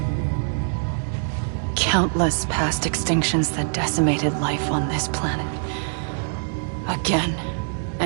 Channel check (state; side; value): silent; left; digital silence